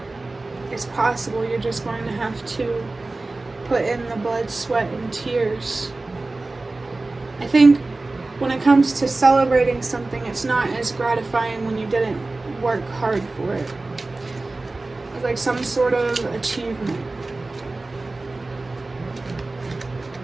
is possible. You're just going to have to put in the blood, sweat, and tears. I think when it comes to celebrating something, it's not as gratifying when you didn't work hard for it. It's like some sort of achievement.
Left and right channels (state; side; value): quieter; left; 3.2 dB